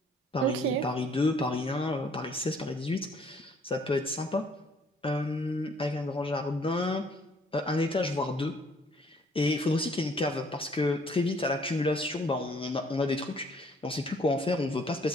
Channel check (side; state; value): both; normal; correlation 0.61